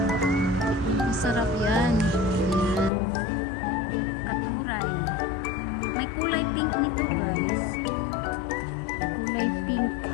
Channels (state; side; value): drops out; right; at 2.9 s